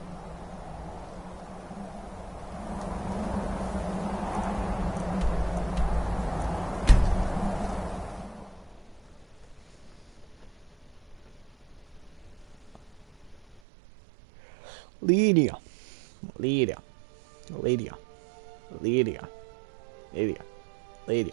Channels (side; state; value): left; drops out; at 13.6 s